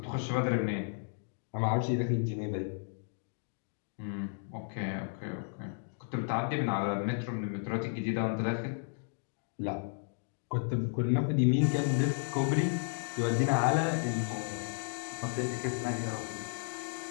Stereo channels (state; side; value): silent; right; digital silence